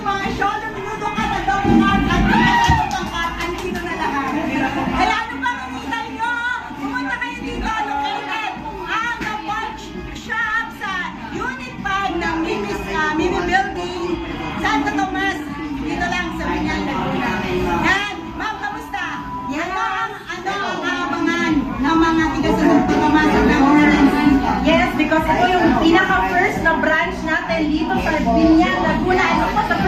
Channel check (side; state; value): both; identical; correlation 1.00